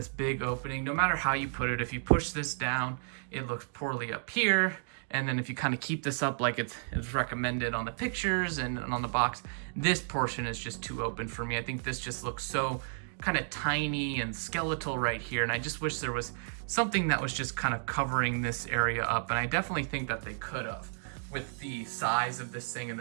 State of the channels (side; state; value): left; silent; digital silence